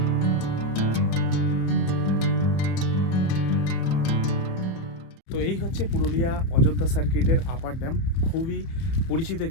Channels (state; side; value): late; right; 30 ms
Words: তো এই হচ্ছে পুরুলিয়া অযোধ্যা সার্কিটের আপার ড্যাম। খুবই পরিচিত